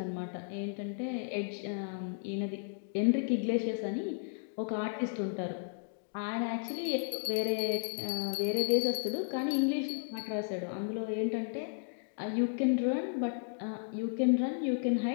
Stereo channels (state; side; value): silent; right; digital silence